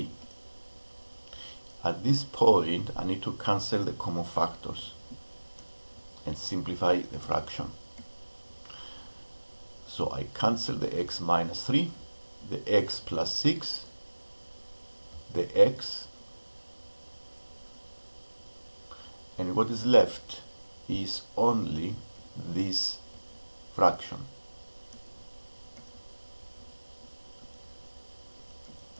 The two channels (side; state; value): both; inverted; correlation -1.00